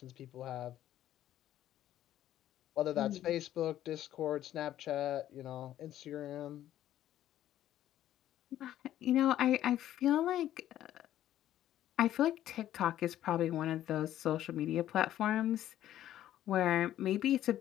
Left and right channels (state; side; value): quieter; right; 12.5 dB